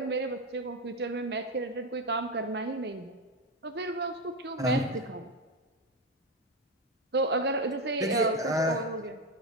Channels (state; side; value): normal; both; correlation 0.12